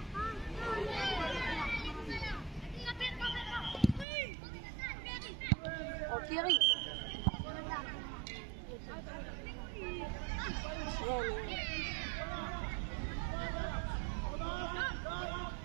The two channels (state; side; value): drops out; left; at 4.0 s